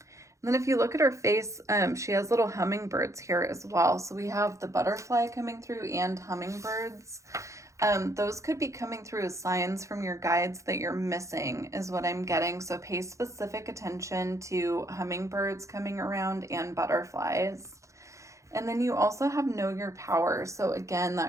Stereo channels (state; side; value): late; left; 0.15 ms